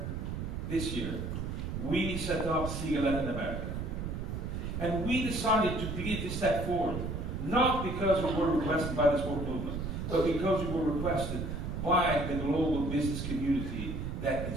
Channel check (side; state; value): right; noise; rumble, 4 dB below the sound